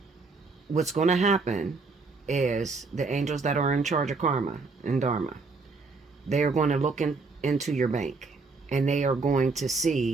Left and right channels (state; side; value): quieter; left; 4.1 dB